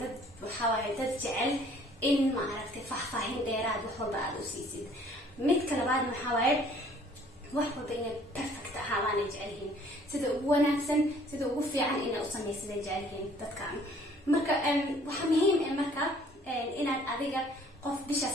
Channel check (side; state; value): both; normal; correlation 0.57